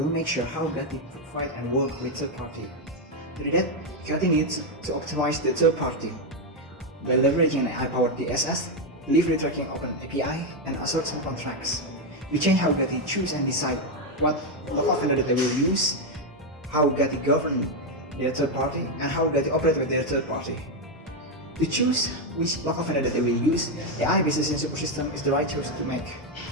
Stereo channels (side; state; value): both; normal; correlation 0.04